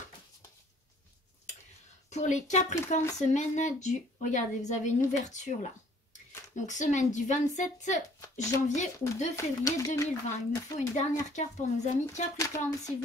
Pour les Capricornes, semaine du... Regardez, vous avez une ouverture là. Donc, semaine du 27 janvier au 2 février 2020. Il me faut une dernière carte pour nos amis Capricornes, s'il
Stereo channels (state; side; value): normal; both; correlation 0.58